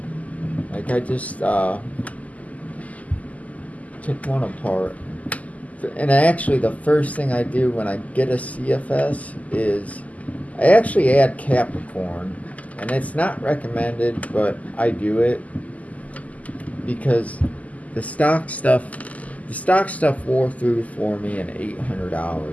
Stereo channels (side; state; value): right; late; 0.074 ms